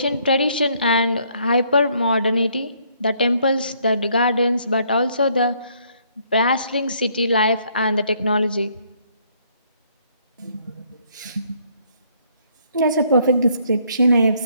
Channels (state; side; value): inverted; both; correlation -0.67